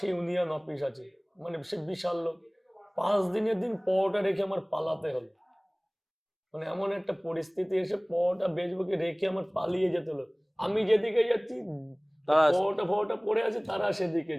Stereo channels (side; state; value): both; identical; correlation 1.00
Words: ইউনিয়ন অফিস আছে, মানে সে বিশাল লোক, 5 দিনের দিন পরোটা রেখে আমার পালাতে হলো, মানে এমন একটা পরিস্থিতি এসে পরোটা বেচবো কি রেখে আমার পালিয়ে যেতে হলো। আমি যেদিকে যাচ্ছি পরোটা পড়ে আছে, তারা সেদিকে